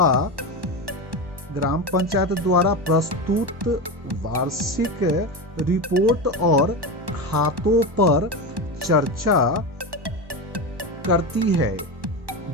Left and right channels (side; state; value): left; late; 1.1 ms